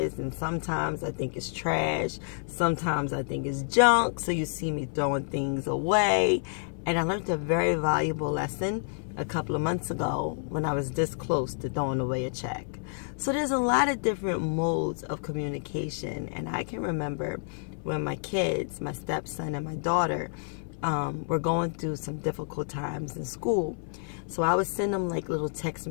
and sometimes I think it's trash, sometimes I think it's junk, so you see me throwing things away. And I learned a very valuable lesson a couple of months ago when I was this close to throwing away a check. So there's a lot of different modes of communication, and I can remember when my kids, my stepson and my daughter, were going through some difficult times in school. So I would send them like little text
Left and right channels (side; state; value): right; silent; 59 dB below the other